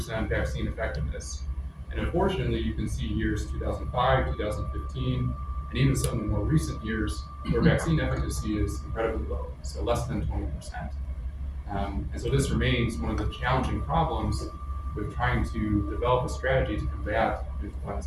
vaccine effectiveness. And unfortunately, you can see years 2005, 2015, and even some of the more recent years where vaccine efficacy is incredibly low, so less than 20%. And so this remains one of the challenging problems with trying to develop a strategy to combat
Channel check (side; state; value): both; identical; correlation 1.00